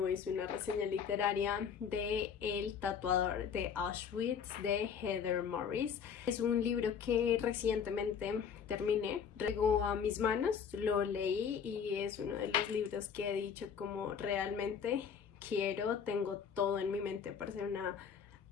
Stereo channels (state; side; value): quieter; right; 7.1 dB